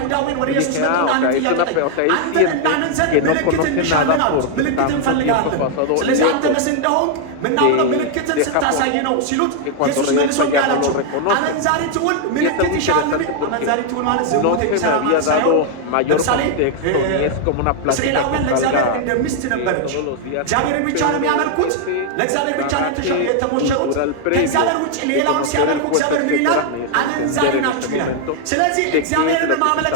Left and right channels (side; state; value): both; different; correlation 0.00